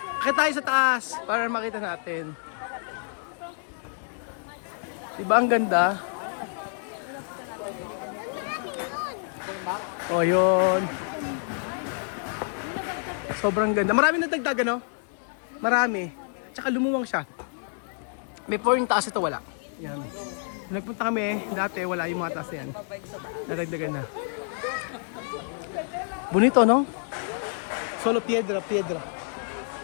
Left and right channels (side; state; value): right; silent; 60 dB below the other